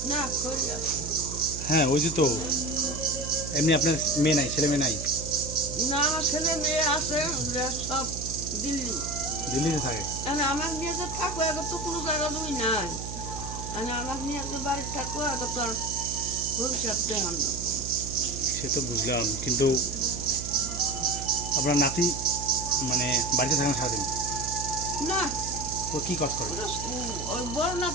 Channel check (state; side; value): noise; right; hum, 8 dB below the sound